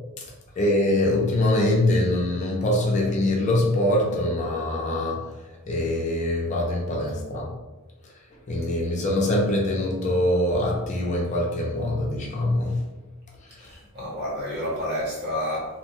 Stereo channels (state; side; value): normal; both; correlation 0.45